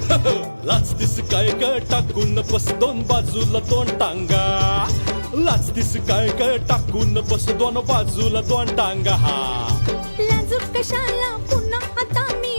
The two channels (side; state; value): both; inverted; correlation -1.00